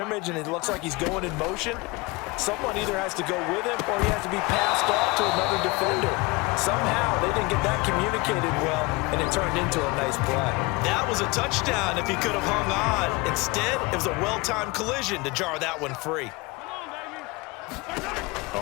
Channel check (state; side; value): quieter; right; 24.7 dB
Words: and it looks like he's going in motion, someone either has to go with him or he has to be passed off to another defender. Somehow they didn't get that communicated well, and it turned into a nice play. That was a touchdown if he could have hung on. Instead, it was a well-timed collision to jar that one free.